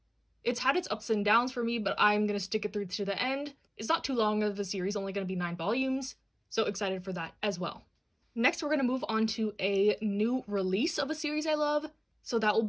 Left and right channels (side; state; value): both; identical; correlation 1.00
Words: It's had its ups and downs for me, but I'm going to stick it through to the end. It's not too long of a series, only going to be 9 volumes, so excited for that as well. Next, we're going to move on to a new release of a series I love. So that will